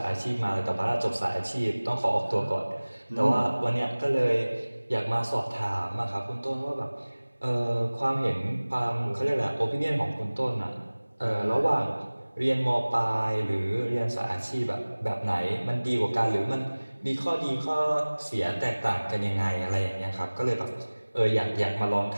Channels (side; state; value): both; inverted; correlation -1.00